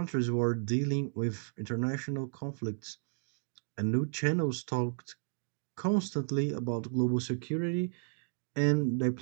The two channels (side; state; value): left; silent; digital silence